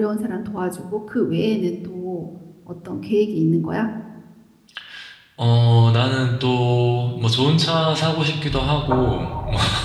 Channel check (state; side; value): identical; both; correlation 1.00